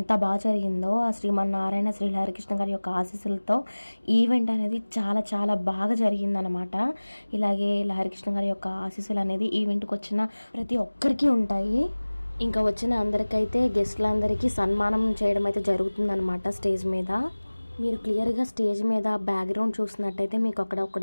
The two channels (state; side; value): inverted; both; correlation -1.00